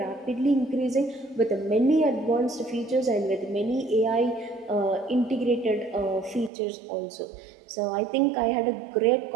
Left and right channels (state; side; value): drops out; left; at 6.5 s